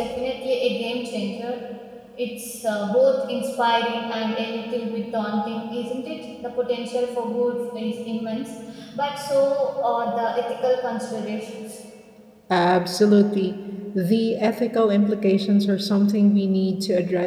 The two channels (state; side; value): identical; both; correlation 1.00